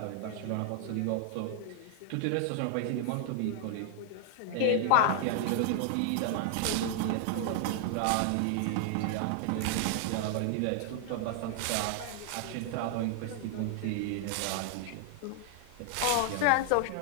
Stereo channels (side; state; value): both; different; correlation 0.00